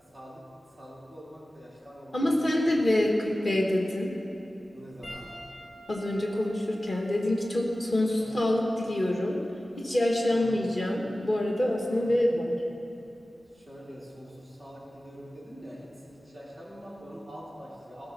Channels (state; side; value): normal; both; correlation 0.95